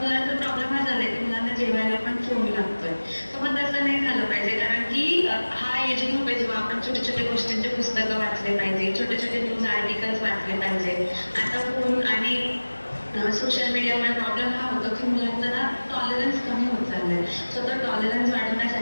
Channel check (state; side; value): inverted; both; correlation -1.00